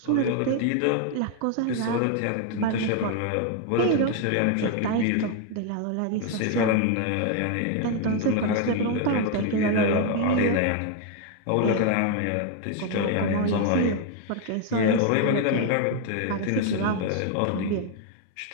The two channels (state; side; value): different; both; correlation 0.01